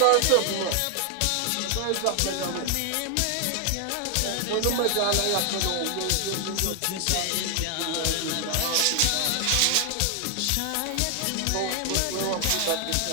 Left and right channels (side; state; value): both; different; correlation 0.00